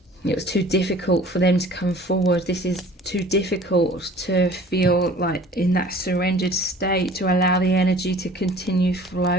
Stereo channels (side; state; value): both; normal; correlation 0.48